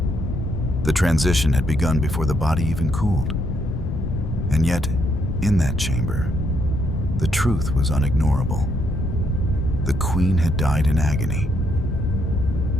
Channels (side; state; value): left; noise; rumble, 6 dB below the sound